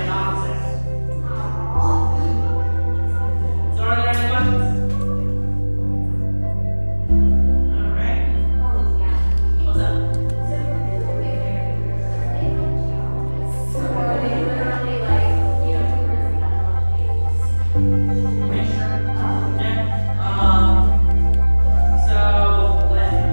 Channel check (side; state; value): both; inverted; correlation -1.00